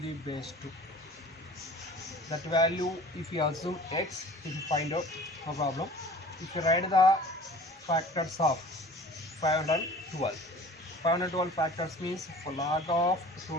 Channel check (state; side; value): normal; both; correlation 0.45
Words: the base 2. That value, if you assume x, if you find out, no problem. If you write the factors of 512. 512 factors means for log of